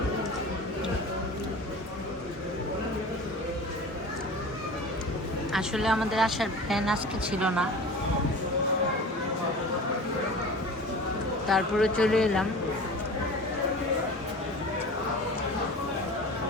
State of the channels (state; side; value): normal; both; correlation 0.37